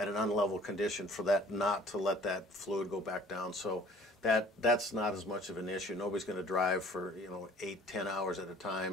an unlevel condition for that not to let that fluid go back down. So that's not as much of an issue. Nobody's going to drive for 8-10 hours at a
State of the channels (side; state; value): both; normal; correlation 0.52